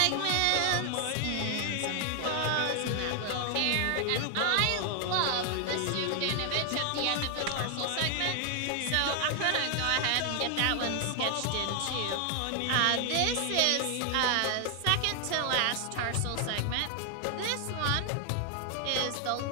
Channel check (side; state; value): both; different; correlation 0.00